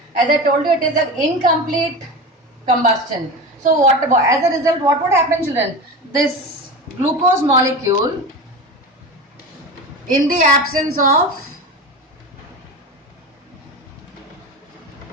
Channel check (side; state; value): both; normal; correlation 0.27